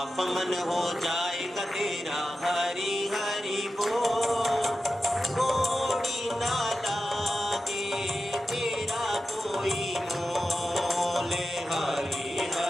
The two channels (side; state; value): both; normal; correlation 0.92